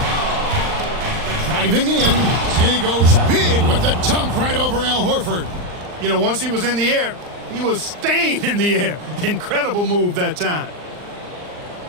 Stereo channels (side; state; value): left; late; 39 ms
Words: Driving in, and he goes big with the dunk right over Al Horford. You know, once he was in the air, he was staying in the air. Incredible move that time.